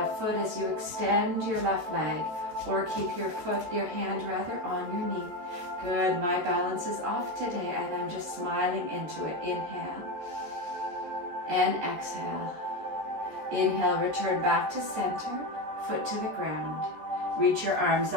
foot as you extend your left leg, or keep your hand on your knee. Good. My balance is off today and I'm just smiling into it. Inhale and exhale. Inhale, return back to center, foot to the ground. Reach your arms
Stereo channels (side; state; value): left; late; 14 ms